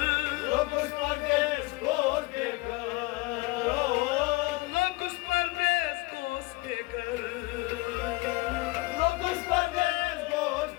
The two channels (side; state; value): right; quieter; 22.5 dB